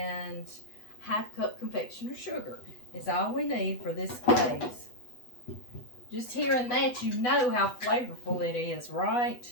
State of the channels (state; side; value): late; right; 8.1 ms